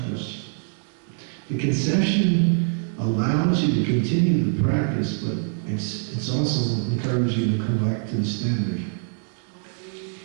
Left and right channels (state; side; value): silent; left; 62 dB below the other